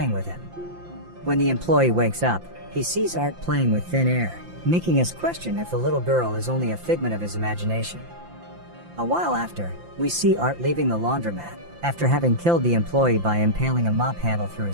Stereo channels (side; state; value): left; late; 5.8 ms